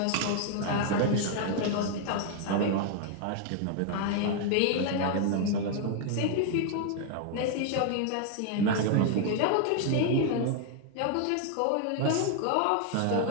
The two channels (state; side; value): different; both; correlation 0.00